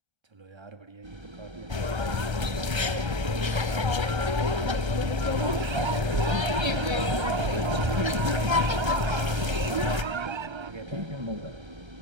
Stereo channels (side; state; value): left; late; 1.3 ms